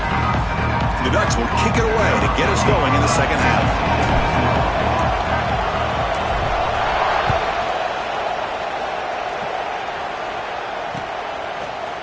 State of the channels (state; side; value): identical; both; correlation 1.00